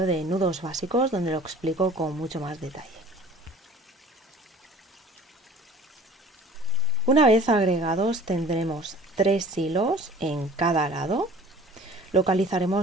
de nudos básicos donde lo explico con mucho más detalle. Una vez agregados tendremos 3 hilos en cada lado.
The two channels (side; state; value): both; normal; correlation 0.47